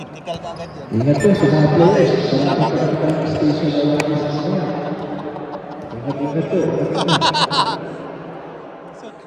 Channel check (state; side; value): identical; both; correlation 1.00